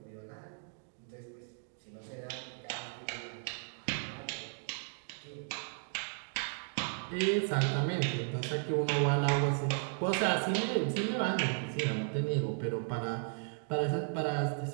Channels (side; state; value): left; silent; 54 dB below the other